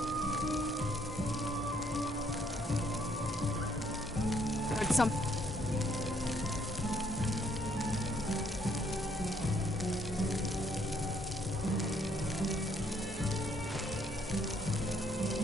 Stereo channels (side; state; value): both; normal; correlation 0.68